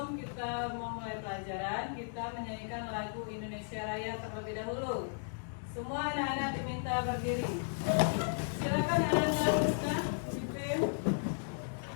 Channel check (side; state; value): right; silent; digital silence